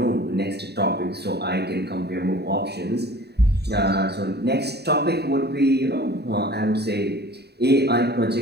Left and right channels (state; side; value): late; left; 0.48 ms